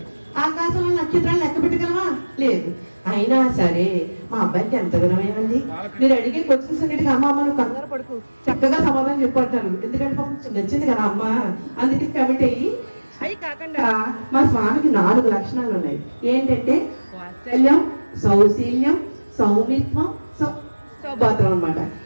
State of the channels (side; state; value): both; inverted; correlation -1.00